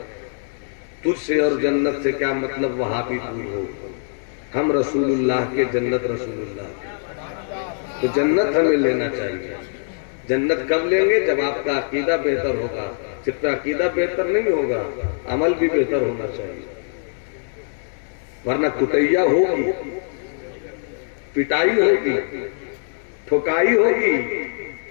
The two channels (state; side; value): silent; right; 64 dB below the other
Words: तुझसे और जन्नत से क्या मतलब, वहां भी दूर हो। हम रसूलुल्लाह के, जन्नत रसूलुल्लाह। तो जन्नत हमें लेना चाहिए। जन्नत कब लेंगे? जब आपका अकीदा बेहतर होगा। सिर्फ अकीदा बेहतर नहीं होगा, अमल भी बेहतर होना चाहिए, वरना कुटैया होगी, पिटाई होगी, ठोकाई होगी।